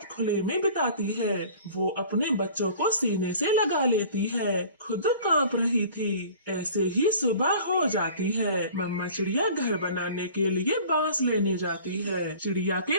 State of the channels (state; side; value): inverted; both; correlation -0.46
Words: खुले में बिताती है। वो अपने बच्चों को सीने से लगा लेती है, खुद कांप रही थी। ऐसे ही सुबह हो जाती है। मम्मा चिड़िया घर बनाने के लिए बांस लेने जाती है। चिड़िया के